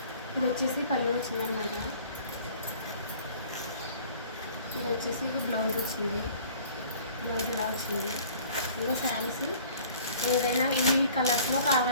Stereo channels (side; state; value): both; inverted; correlation -0.51